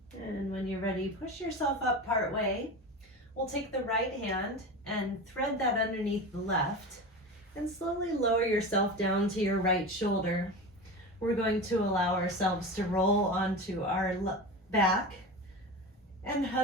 And when you're ready, push yourself up part way. We'll take the right hand and thread that underneath the left and slowly lower yourself down to your right shoulder. We're going to allow ourselves to roll onto our back and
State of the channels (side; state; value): both; normal; correlation 0.27